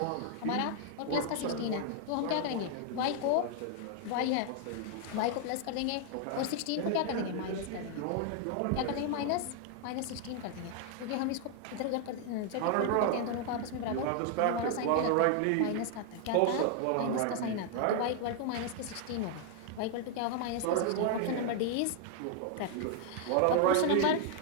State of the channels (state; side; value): different; both; correlation 0.00